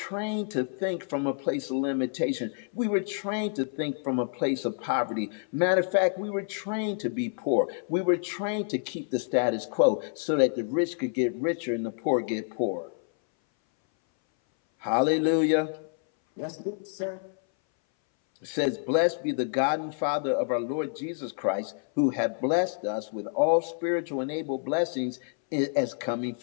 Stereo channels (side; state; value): right; silent; 58 dB below the other